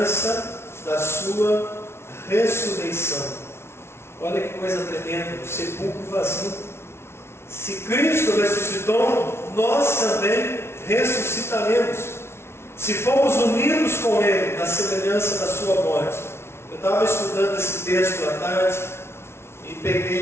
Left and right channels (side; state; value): right; late; 0.12 ms